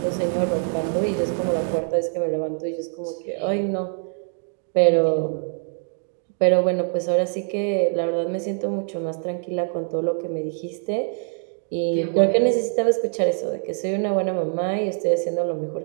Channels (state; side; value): silent; left; 61 dB below the other